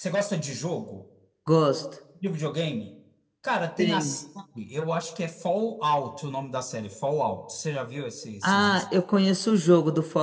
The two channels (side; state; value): both; identical; correlation 1.00